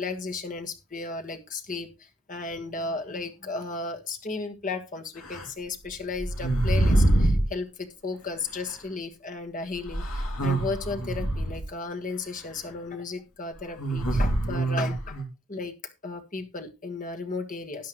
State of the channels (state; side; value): normal; both; correlation 0.74